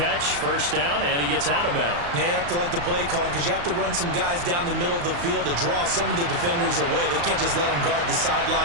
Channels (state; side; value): late; left; 35 ms